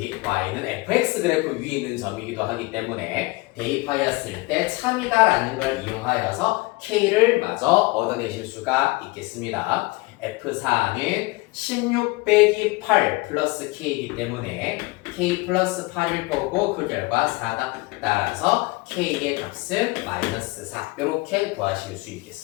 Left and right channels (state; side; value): quieter; right; 23.4 dB